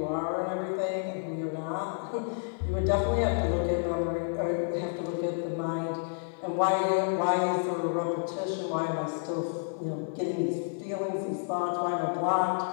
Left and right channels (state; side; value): silent; right; 55 dB below the other